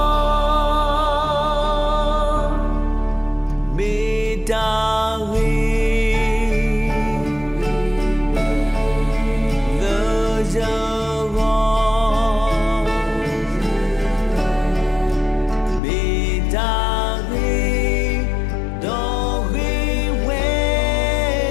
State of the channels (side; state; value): right; drops out; at 15.8 s